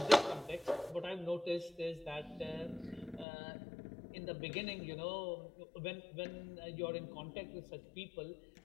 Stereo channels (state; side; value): drops out; right; at 3.2 s